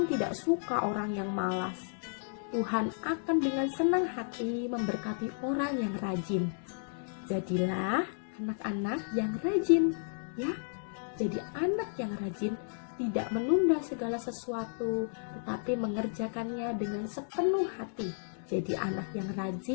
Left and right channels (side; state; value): right; silent; digital silence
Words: tidak suka orang yang malas. Tuhan akan dengan senang hati memberkati orang yang rajin. Jadilah anak-anak yang rajin, ya. Jadi anak yang rajin tidak menunda segala sesuatu, tetapi mengerjakannya dengan sepenuh hati. Jadi anak yang